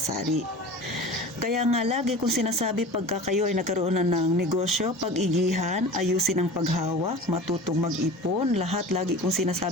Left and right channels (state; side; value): normal; both; correlation 0.36